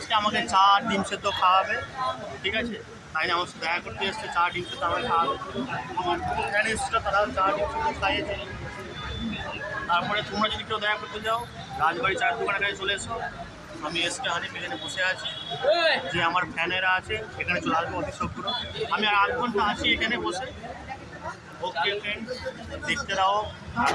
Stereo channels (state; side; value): identical; both; correlation 1.00